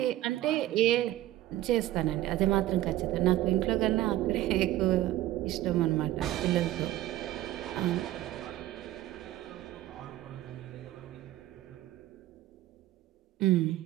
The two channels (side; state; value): left; quieter; 14.5 dB